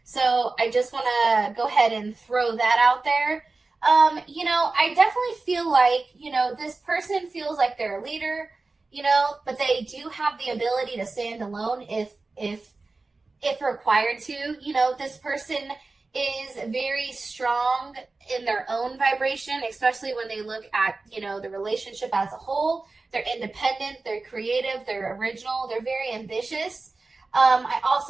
So, I just want to go ahead and throw that out there. You know, I definitely feel like, you know, this person feels like they're a leader, you know, but they do have the ability to stand alone if required to. You know, this person is very strong in their own vibration, especially when they look at, you know, the relationship as a whole. They're independent, they're creative, they're original, they're very ambitious. I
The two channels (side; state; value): left; quieter; 3.6 dB